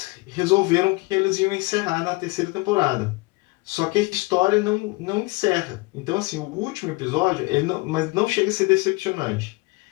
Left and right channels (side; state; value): right; quieter; 24.8 dB